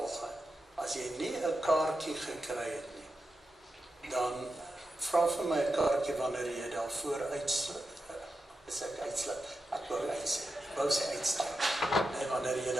as jy nie 'n kaartjie gekry het nie, dan vra vir my 'n kaartjie wanneer jy daarvoor uitsluit. Is ek uitsluit? Ek wou sê uitstap. En wanneer jy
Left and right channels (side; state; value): both; normal; correlation 0.89